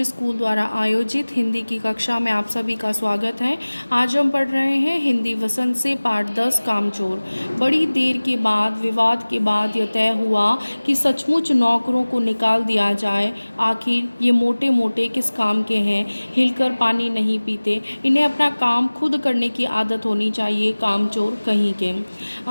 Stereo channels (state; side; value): inverted; both; correlation -1.00